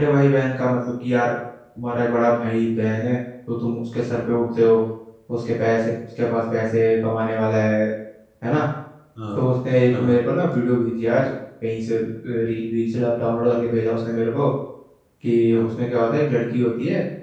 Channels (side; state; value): both; identical; correlation 1.00